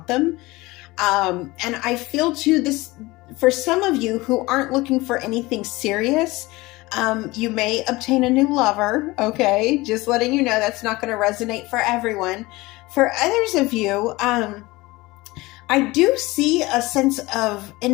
them. And I feel too this for some of you who aren't looking for anything serious. You may obtain a new lover. Okay, just letting you know that's not going to resonate for everyone. For others of you, I do see a sense of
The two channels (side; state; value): right; quieter; 21.1 dB